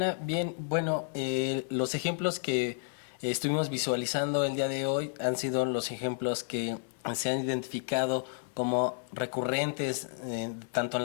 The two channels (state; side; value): silent; right; 57 dB below the other